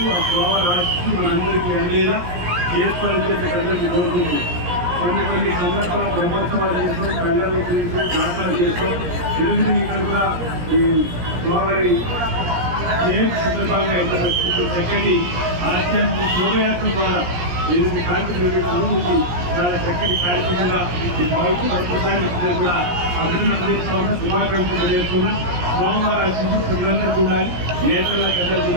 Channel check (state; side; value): late; left; 17 ms